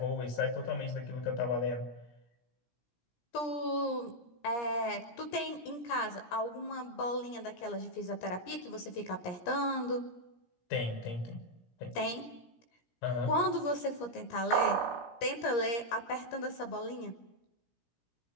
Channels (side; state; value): right; late; 17 ms